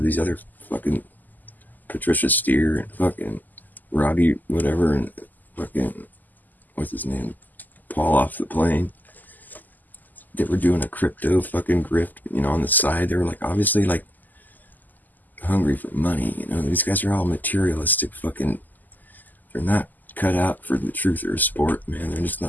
these other fucking Patricia Steer and fucking Robbie whatever and fucking, what's his name, Paul off the plane. They were doing a crypto fucking grift, you know, on the side. They were like, obviously like hungry for money, you know. These guys are all materialistic fucking, they're not cut out for the truth or sport, man. They're just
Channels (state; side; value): late; right; 0.084 ms